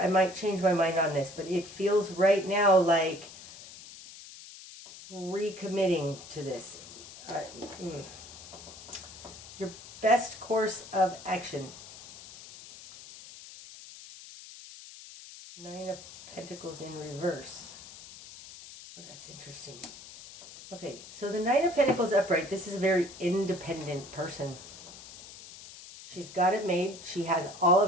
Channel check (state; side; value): noise; left; hiss, 16 dB below the sound